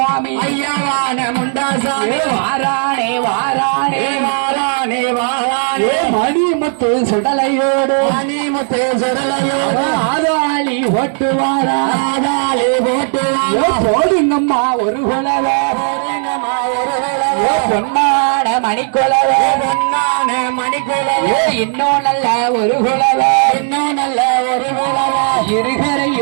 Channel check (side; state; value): left; silent; 57 dB below the other